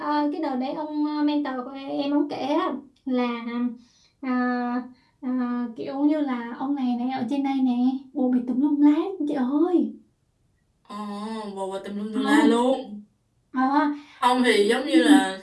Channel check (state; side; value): identical; both; correlation 1.00